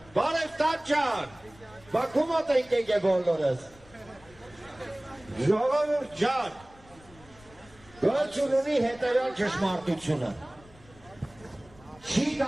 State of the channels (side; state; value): left; noise; rumble, 25 dB below the sound